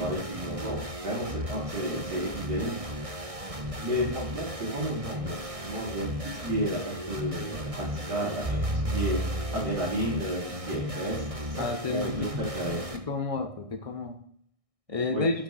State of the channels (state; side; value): late; left; 1.6 ms